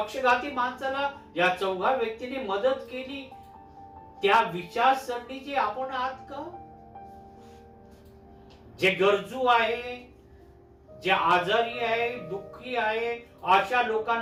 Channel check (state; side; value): identical; both; correlation 1.00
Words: माणसाला या चौघा व्यक्तीने मदत केली त्या विचारसरणीचे आपण आहात का? जे गरजू आहे, जे आजारी आहे, दुःखी आहे, अशा